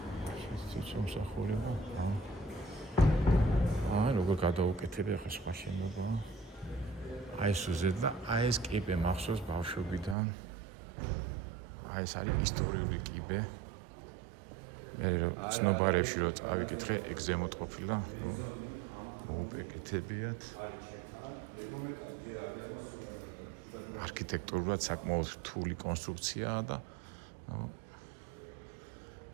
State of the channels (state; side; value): drops out; left; at 10.2 s